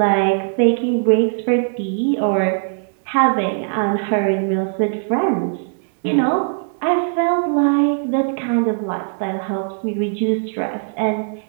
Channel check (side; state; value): left; silent; digital silence